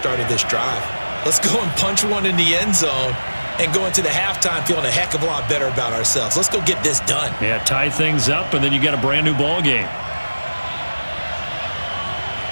of this drive. Let's go and punch one in the end zone and go into the halftime feeling a heck of a lot better about ourselves. Let's go get this done. Yeah, tie things up, and then you get a brand new ball game.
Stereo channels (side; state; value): both; inverted; correlation -1.00